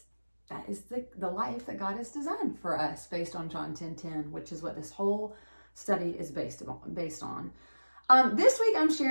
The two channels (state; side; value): inverted; both; correlation -1.00